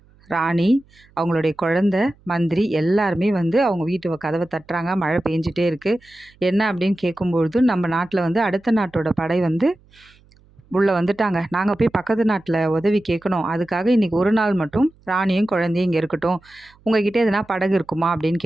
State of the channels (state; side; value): noise; right; hum, 30 dB below the sound